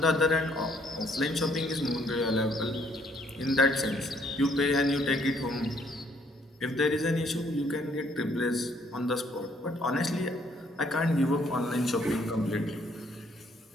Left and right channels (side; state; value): both; normal; correlation 0.66